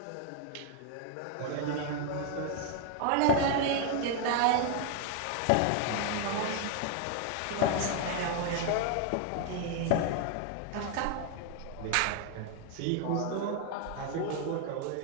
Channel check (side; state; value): both; different; correlation 0.00